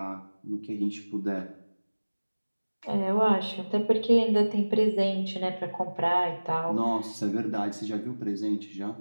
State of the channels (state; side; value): inverted; both; correlation -1.00